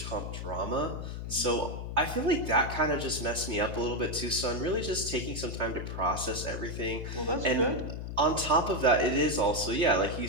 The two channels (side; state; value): left; noise; hum, 6 dB below the sound